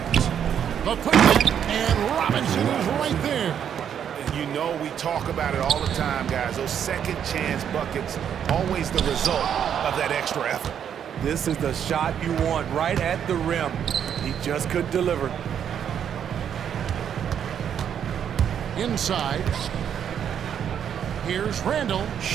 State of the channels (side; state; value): left; quieter; 8.7 dB